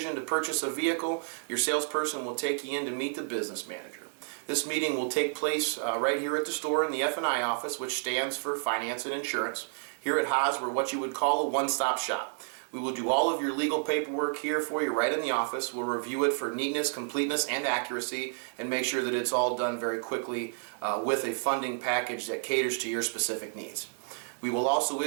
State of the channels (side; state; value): left; silent; 57 dB below the other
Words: to purchase a vehicle, your salesperson will take you in to meet the business manager. This meeting will take place right here at the store in the F&I office, which stands for Finance and Insurance. Here at Haas, we're what you would call a one-stop shop. We will do all of your legal paperwork here for you right in the office. We'll review it for neatness, completeness, and accuracy, and make sure that it's all done very quickly with a funding package that caters to your specific needs. We will also